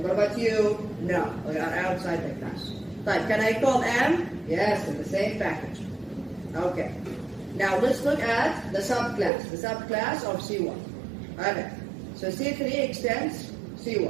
about you? No, we are outside the class. Type, can I call M? Yes, in the same package. Okay. Now let's look at the subclass of C1. Okay, so C3 extends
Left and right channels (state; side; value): drops out; left; at 9.3 s